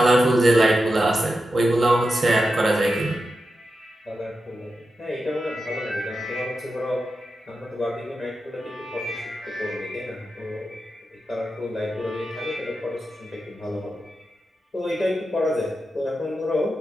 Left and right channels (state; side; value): normal; both; correlation 0.89